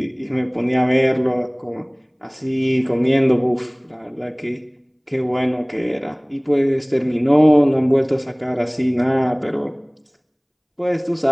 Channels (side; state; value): both; identical; correlation 1.00